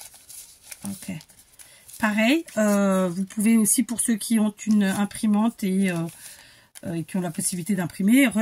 Ok. Pareil, vous pouvez aussi, pour ceux qui ont une imprimante et qui ont la possibilité d'imprimer,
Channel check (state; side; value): identical; both; correlation 1.00